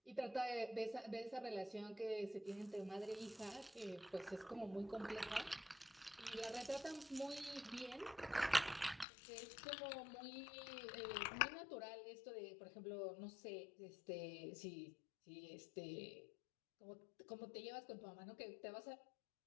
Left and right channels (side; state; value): right; drops out; at 9.1 s